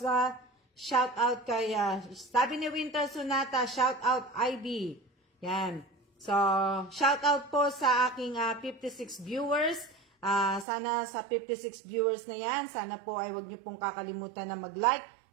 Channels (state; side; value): drops out; left; at 10.7 s